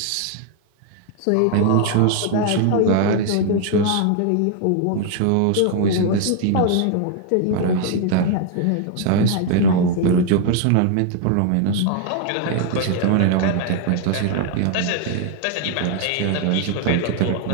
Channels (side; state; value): both; different; correlation 0.00